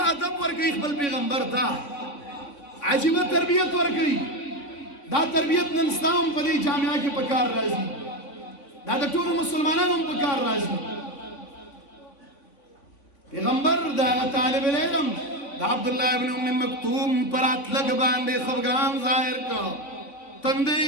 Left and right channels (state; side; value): late; right; 3.5 ms